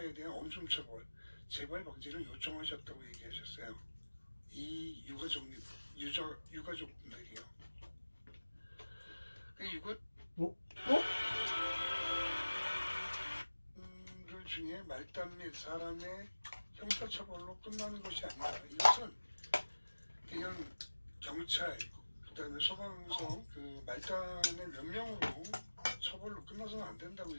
대한 엄중 처벌, 재발 방지를 요청하셨다고 얘기하셨어요. 이 유가족분들이요. 그 중에 말단 및 사람의 형사처벌로 끝나는 것이 아니다. 이것은 그냥 경찰, 그 다음에 소방서, 그 말단의 몇 명으로 처벌로 끝나서는 안 된다고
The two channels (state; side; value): inverted; both; correlation -1.00